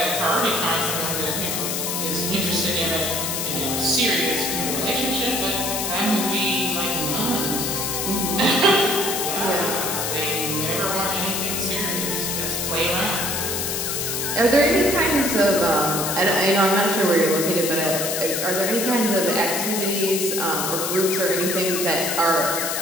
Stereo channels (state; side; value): noise; left; hiss, 1 dB below the sound